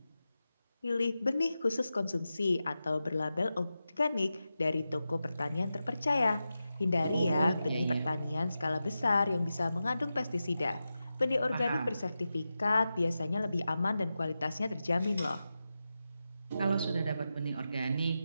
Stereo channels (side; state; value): both; inverted; correlation -0.91